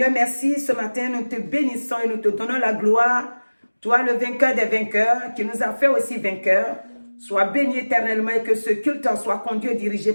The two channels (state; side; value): inverted; both; correlation -1.00